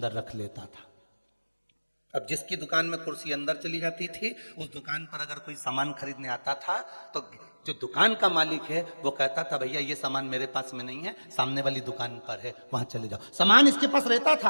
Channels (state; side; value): inverted; both; correlation -1.00